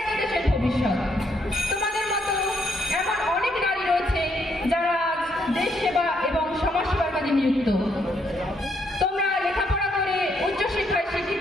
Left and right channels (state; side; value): normal; both; correlation 0.73